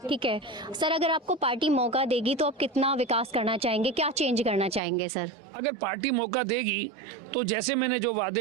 ठीक है सर, अगर आपको पार्टी मौका देगी तो आप कितना विकास करना चाहेंगे, क्या चेंज करना चाहेंगे सर? अगर पार्टी मौका देगी तो जैसे मैंने जो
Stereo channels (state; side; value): drops out; left; at 4.8 s